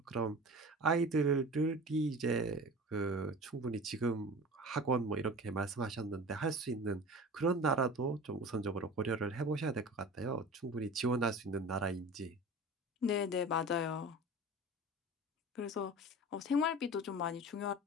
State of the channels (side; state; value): both; normal; correlation 0.37